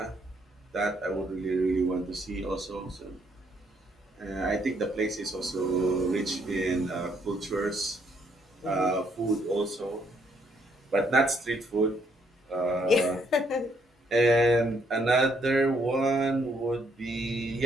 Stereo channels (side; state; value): both; normal; correlation 0.70